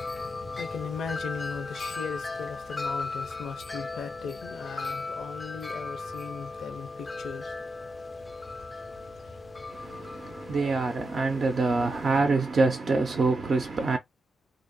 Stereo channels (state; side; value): normal; both; correlation 0.86